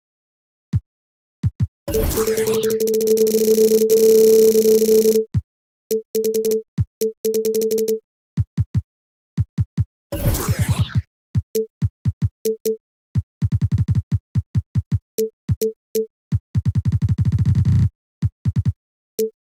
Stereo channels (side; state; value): both; identical; correlation 1.00